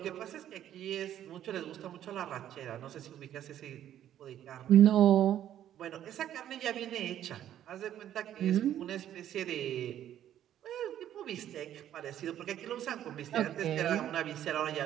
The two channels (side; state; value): left; quieter; 11.2 dB